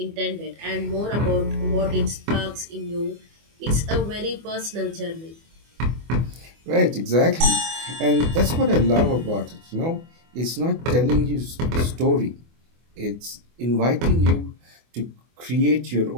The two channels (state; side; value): late; left; 24 ms